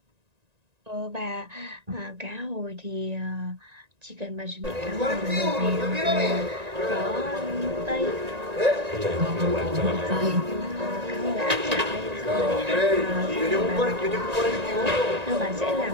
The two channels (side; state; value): left; late; 1.9 ms